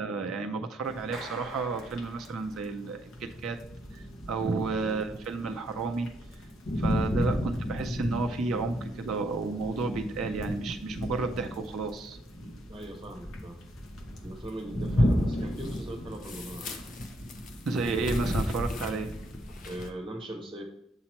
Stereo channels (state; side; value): normal; both; correlation 0.73